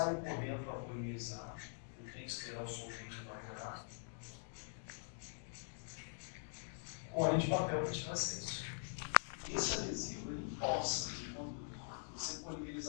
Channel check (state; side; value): silent; right; digital silence